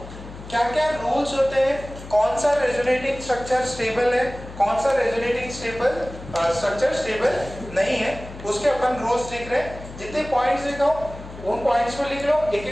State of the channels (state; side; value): noise; left; hum, 14 dB below the sound